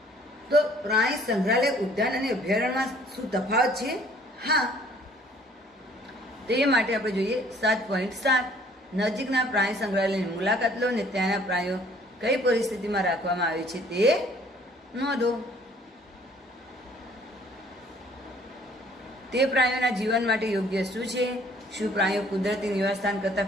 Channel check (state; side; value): normal; both; correlation 0.57